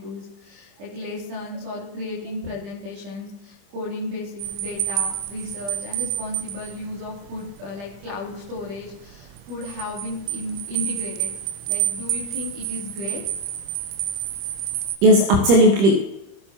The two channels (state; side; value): late; left; 26 ms